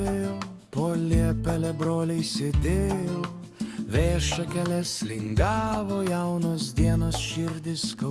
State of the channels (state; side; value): identical; both; correlation 1.00